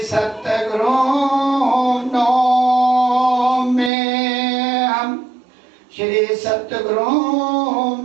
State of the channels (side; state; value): left; drops out; at 3.9 s